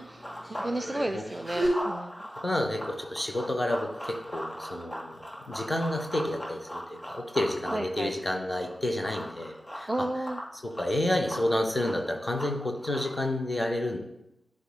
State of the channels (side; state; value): both; normal; correlation 0.92